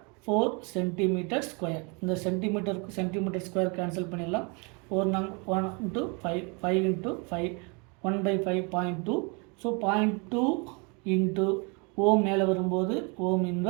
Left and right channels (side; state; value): left; quieter; 32.3 dB